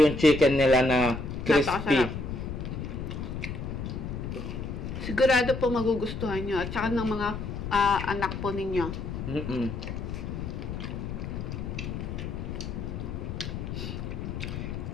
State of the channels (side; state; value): left; noise; rumble, 5 dB below the sound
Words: yung chicken nila na crispy. Sigurado po magugustuhan nyo. At saka ng mga anak po ninyo.